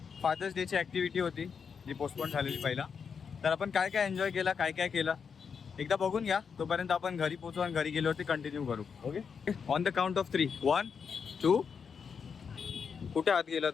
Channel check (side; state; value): right; quieter; 6.3 dB